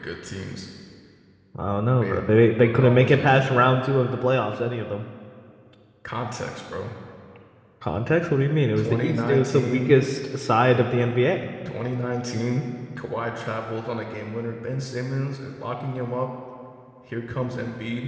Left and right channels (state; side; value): identical; both; correlation 1.00